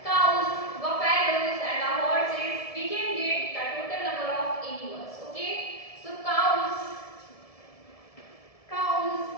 cows, buffaloes and the horses, we can get the total number of animals. Okay. So cows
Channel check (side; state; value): right; late; 1.7 ms